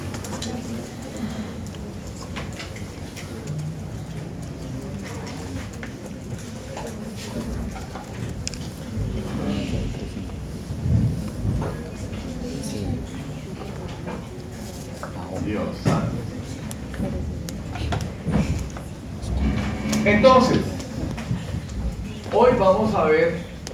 Dios santo. Entonces, hoy vamos a ver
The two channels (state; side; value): identical; both; correlation 1.00